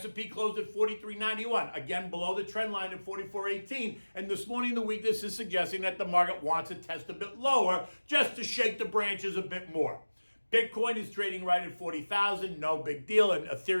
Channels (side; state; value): both; inverted; correlation -1.00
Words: closed at 43.91, again below the trend line at 44.18. And this morning, the weakness is suggesting that the market wants to test a bit lower just to shake the branches a bit more. Bitcoin is trading right at 40,000, no big deal, and